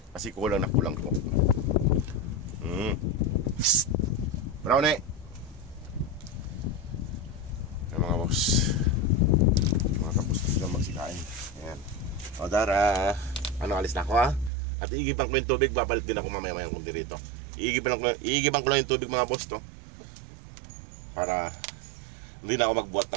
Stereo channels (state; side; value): drops out; left; at 14.5 s